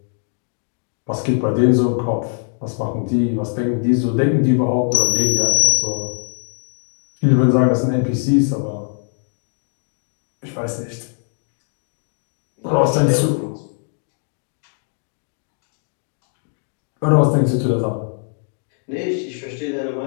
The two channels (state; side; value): silent; right; digital silence